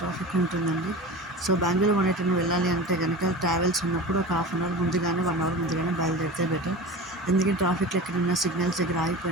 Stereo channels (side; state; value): both; normal; correlation 0.32